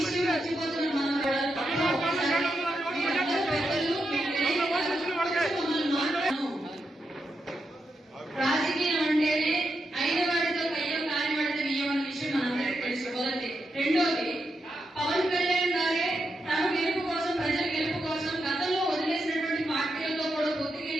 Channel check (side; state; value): both; normal; correlation 0.85